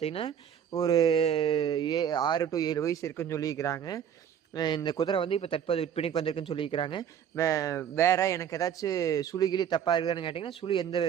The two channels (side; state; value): left; quieter; 8.8 dB